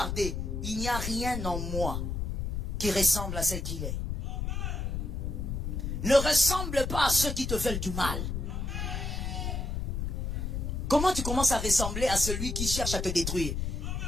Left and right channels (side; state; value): left; noise; rumble, 2 dB below the sound